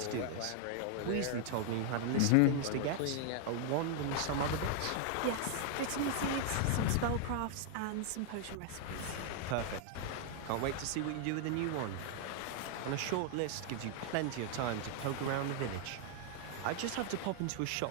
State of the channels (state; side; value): different; both; correlation 0.00